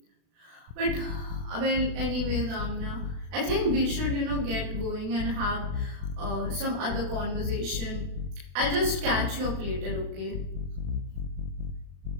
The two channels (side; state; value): left; late; 36 ms